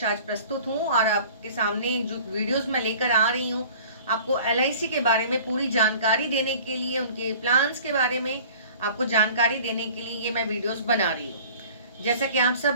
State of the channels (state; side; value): inverted; both; correlation -0.46